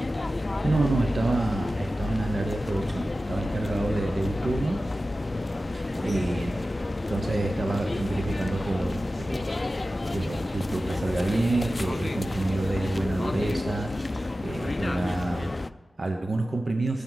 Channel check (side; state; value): both; normal; correlation 0.94